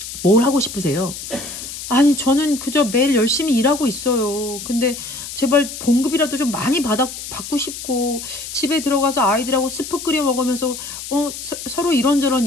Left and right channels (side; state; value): left; noise; hiss, 9 dB below the sound